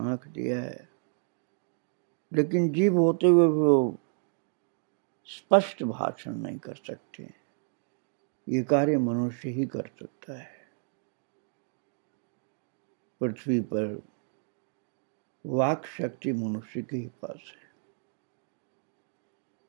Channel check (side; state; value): left; silent; 57 dB below the other